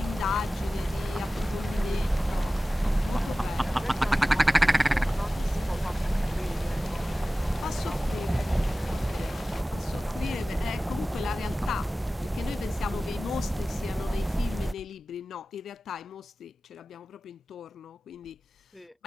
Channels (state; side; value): normal; both; correlation 0.96